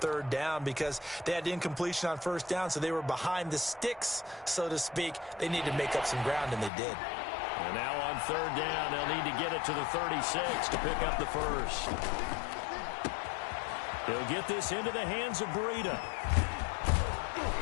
down because they had incompletion on 1st down, so they were behind the sticks, so to speak. They needed to make up some ground, and they did. And now on 3rd down, they'll need to get it to the 36 to pick up the 1st. He'll get this into the hands of Breida.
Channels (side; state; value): right; drops out; at 6.7 s